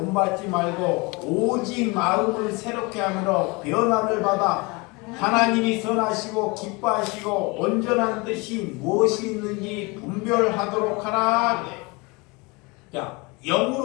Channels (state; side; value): quieter; right; 26.8 dB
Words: 말고 오직 마음을 새롭게 하므로 변화를 받아 하나님이 선하시고 기뻐하시고 온전한 뜻이 무엇이 있는지 분별하도록 하라. 자,